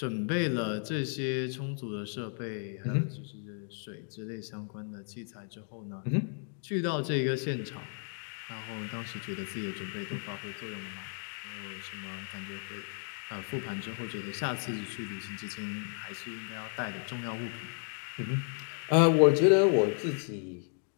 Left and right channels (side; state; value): right; silent; 55 dB below the other